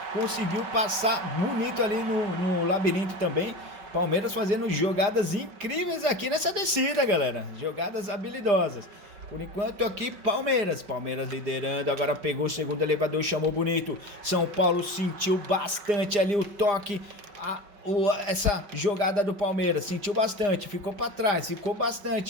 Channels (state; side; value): late; left; 4.9 ms